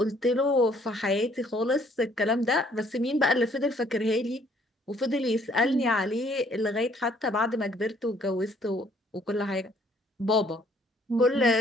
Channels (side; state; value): both; normal; correlation 0.62